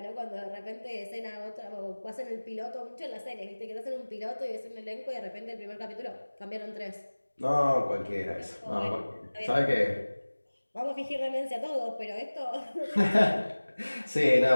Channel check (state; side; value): inverted; both; correlation -1.00